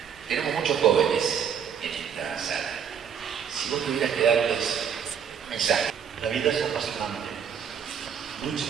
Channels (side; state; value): left; quieter; 7.7 dB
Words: Tenemos muchos jóvenes en esta sala. Si vos tuvieras que darles un mensaje. La vida es apasionante. Lucha